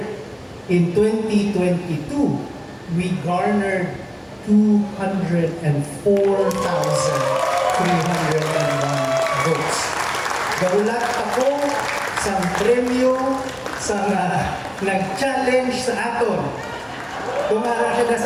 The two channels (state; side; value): identical; both; correlation 1.00